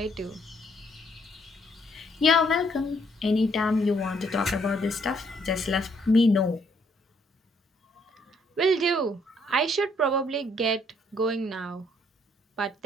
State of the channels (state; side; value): normal; both; correlation 0.68